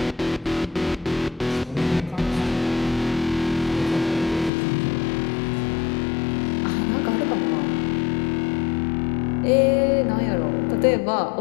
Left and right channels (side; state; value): right; drops out; at 4.5 s